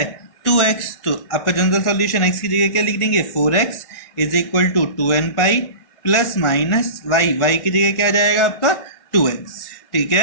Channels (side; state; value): right; late; 1.6 ms